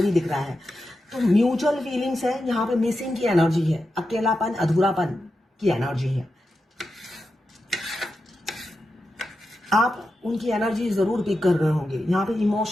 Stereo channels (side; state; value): both; normal; correlation 0.89